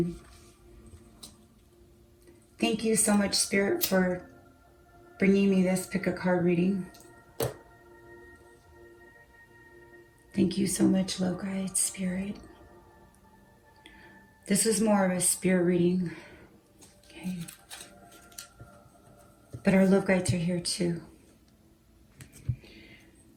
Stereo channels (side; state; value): both; identical; correlation 1.00